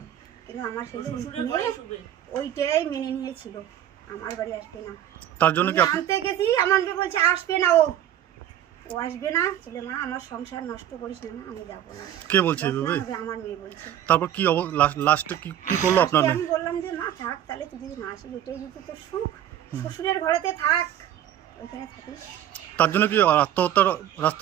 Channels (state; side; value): quieter; left; 11.3 dB